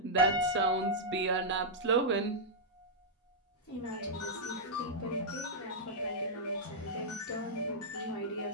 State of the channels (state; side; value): normal; both; correlation -0.08